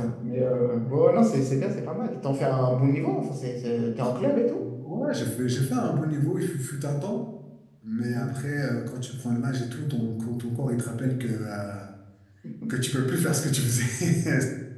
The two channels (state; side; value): identical; both; correlation 1.00